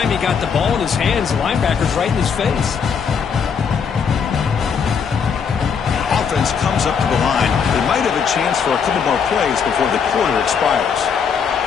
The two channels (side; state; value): right; quieter; 6.6 dB